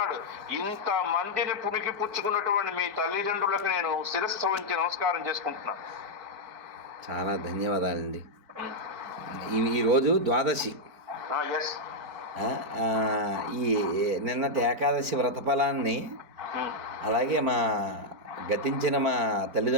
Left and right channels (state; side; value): late; left; 4.6 ms